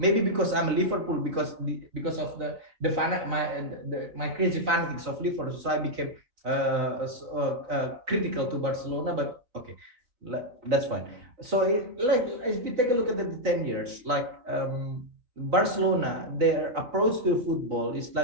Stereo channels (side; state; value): left; late; 4.1 ms